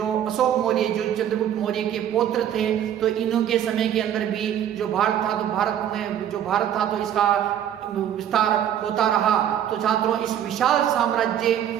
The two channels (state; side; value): quieter; left; 10.2 dB